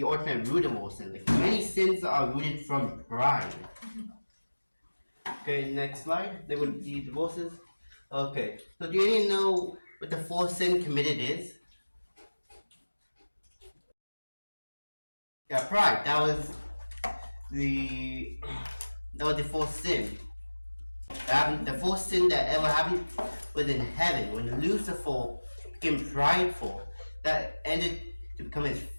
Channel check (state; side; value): inverted; both; correlation -1.00